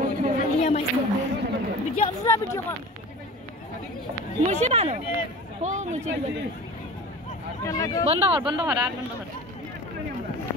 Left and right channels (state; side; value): normal; both; correlation 0.37